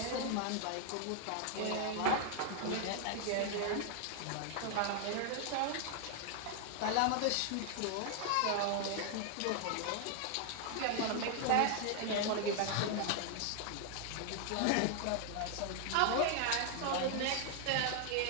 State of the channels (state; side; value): different; both; correlation 0.00